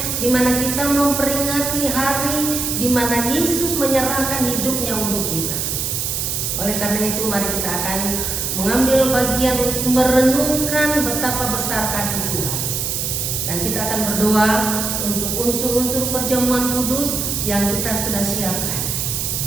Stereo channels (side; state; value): right; noise; hiss, 1 dB below the sound